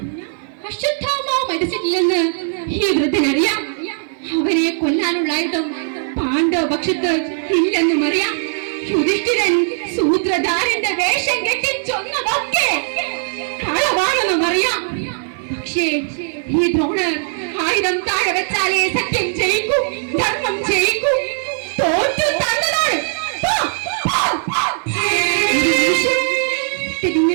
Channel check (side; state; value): left; silent; 55 dB below the other